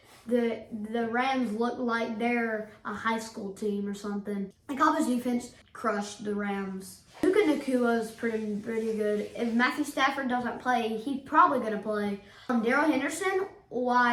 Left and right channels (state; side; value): identical; both; correlation 1.00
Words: The Rams look like they're a high school team or something. The Cowboys defense crushed the Rams. Puka Nacua is pretty good. If Matthew Stafford doesn't play, he's probably going to play. Darrell Henderson,